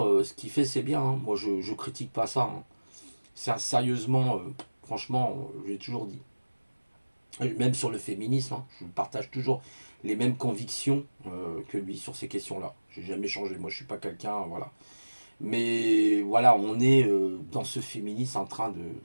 ce qu'il fait, c'est bien. Hein. Moi, je critique pas ça. Hein. Sérieusement, franchement, j'ai toujours dit. Même sur le féminisme, hein, je partage toujours les mêmes convictions que lui sur ces questions-là. J'ai jamais changé. Moi, je suis pas quelqu'un, voilà. Mais voilà, on est dans ce féminisme en train de,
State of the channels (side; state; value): both; inverted; correlation -1.00